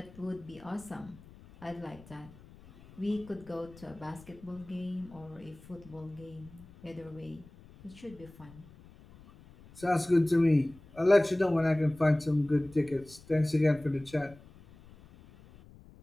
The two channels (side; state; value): left; noise; rumble, 22 dB below the sound